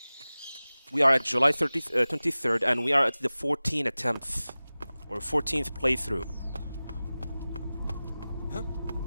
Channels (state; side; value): inverted; both; correlation -0.97